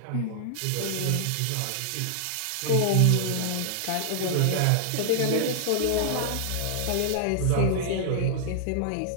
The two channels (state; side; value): different; both; correlation -0.01